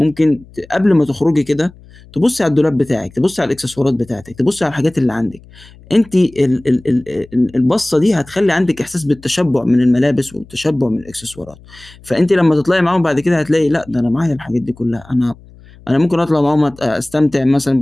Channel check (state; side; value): noise; left; hum, 23 dB below the sound